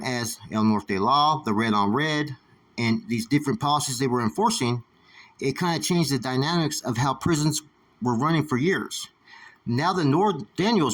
as El Norte Law, the red on red, and these different policies they were enforcing, it kind of changed the dynamics of how prisons were running for years. Now the Norteños,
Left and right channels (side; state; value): both; identical; correlation 1.00